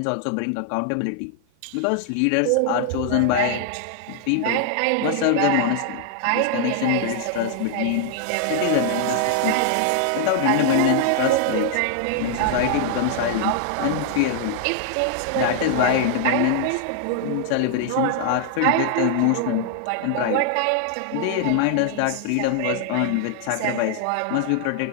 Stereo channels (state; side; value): different; both; correlation 0.00